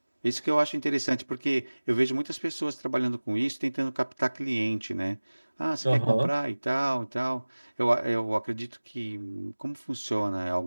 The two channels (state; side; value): inverted; both; correlation -1.00